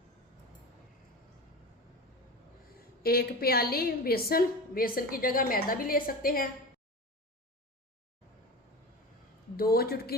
एक प्याली बेसन की जगह मैदा भी ले सकते हैं। 2 चुटकी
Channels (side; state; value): both; normal; correlation 0.29